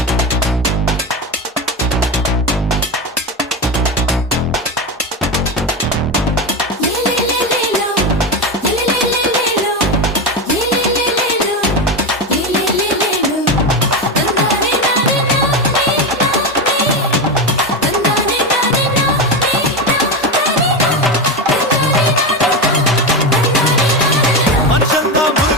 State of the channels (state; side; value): normal; both; correlation 0.16